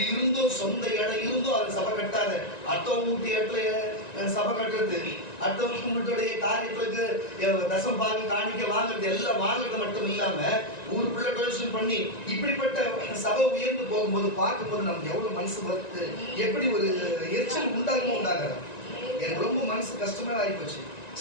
இருந்தோ சொந்த இடம் இருந்தோ அதை சபை கட்டாத, அடுத்தவங்க வீட்டு இடத்துல சபை கட்டுறது, அடுத்தவங்க வீட்டுடைய காரியத்துக்கு தசம் பாகு காணிக்க வாங்குறது, எல்லாம் வாங்குறது மட்டும் இல்லாம ஊருக்குள்ள டொனேஷன் பண்ணி இப்படிப்பட்ட சபை உயர்ந்து போகும்போது பார்க்கும்போது நமக்கு எவ்வளவு மனசு வருது, எப்படி ஒரு எரிச்சல் உண்டாகாது. எனக்கு ரொம்ப மனசு கஷ்டமே ஆகிப்போச்சு.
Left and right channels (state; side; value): late; right; 1.9 ms